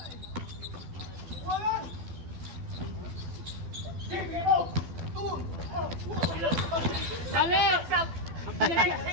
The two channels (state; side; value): late; left; 12 ms